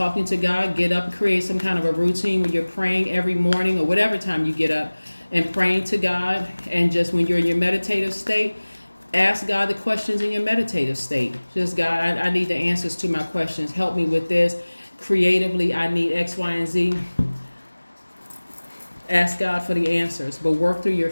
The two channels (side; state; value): both; inverted; correlation -1.00